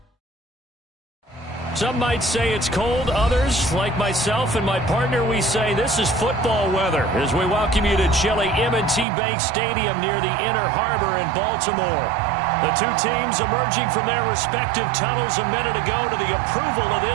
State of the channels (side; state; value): left; drops out; at 9.1 s